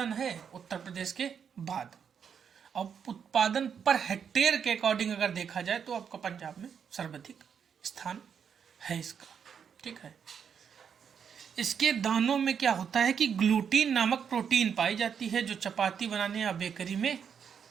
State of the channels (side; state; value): left; quieter; 7.3 dB